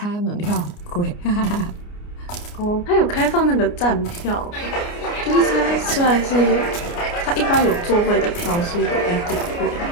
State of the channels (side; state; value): right; late; 29 ms